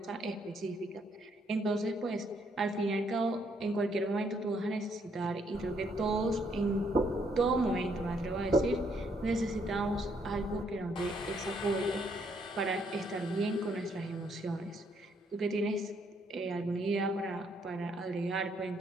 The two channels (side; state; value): both; normal; correlation 0.71